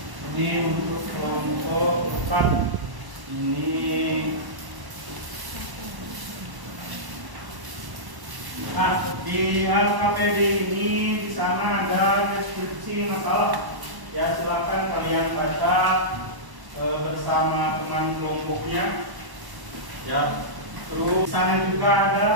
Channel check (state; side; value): late; left; 1.1 ms